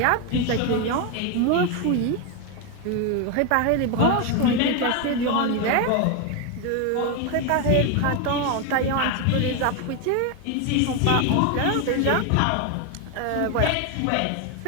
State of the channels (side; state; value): both; different; correlation 0.01